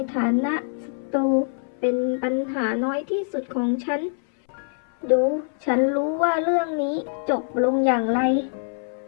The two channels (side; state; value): right; silent; 59 dB below the other